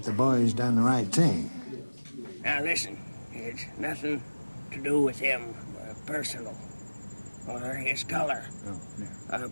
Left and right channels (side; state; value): both; inverted; correlation -1.00